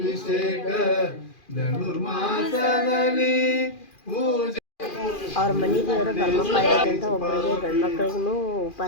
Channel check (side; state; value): right; late; 2.4 ms